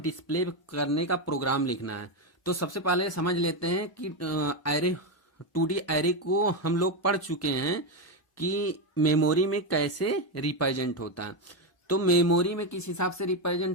डिस्प्ले करने का प्रोग्राम लिखना है। तो सबसे पहले समझ लेते हैं कि एरे 2D एरे को हम लोग पढ़ चुके हैं कि मेमोरी में कैसे रिप्रेजेंट होता है। तो मेमोरी में किस हिसाब से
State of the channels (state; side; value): late; right; 1.0 ms